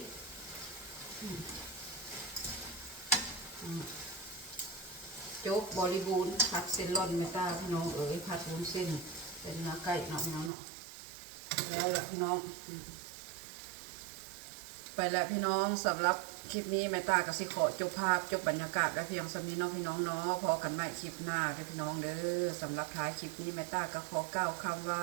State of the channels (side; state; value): left; drops out; at 10.5 s